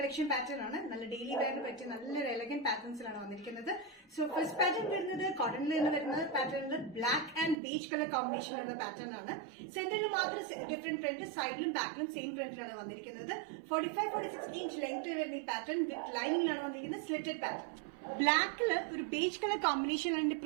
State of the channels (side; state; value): left; drops out; at 7.6 s